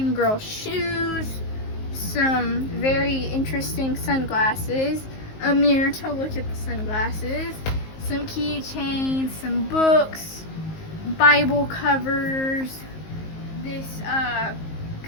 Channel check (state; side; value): late; right; 19 ms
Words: Girl shoes, some very interesting sunglasses, a mirror to look at the sunglasses, some keychains, some books, Bible covers, this